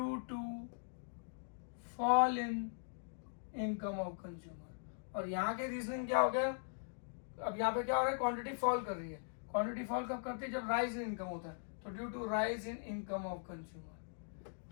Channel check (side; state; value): right; silent; digital silence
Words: to fall in income of consumer. और यहाँ के रीजनिंग क्या हो गया, अब यहाँ पे क्या हो रहा है, क्वांटिटी फॉल कर रही है। क्वांटिटी फॉल कब करती है, जब राइज इन इनकम होता है, तो due to rise in income of consumer.